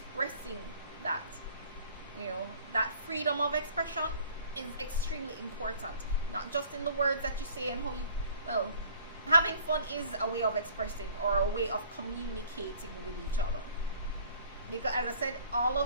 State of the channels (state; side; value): inverted; both; correlation -0.53